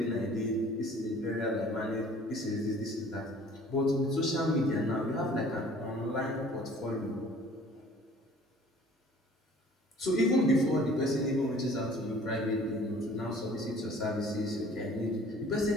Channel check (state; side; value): normal; both; correlation 0.52